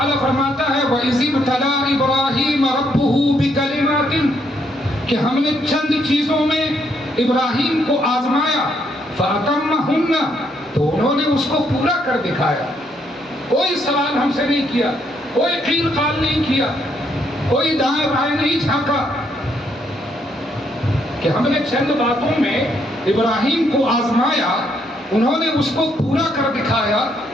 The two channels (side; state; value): both; normal; correlation 0.73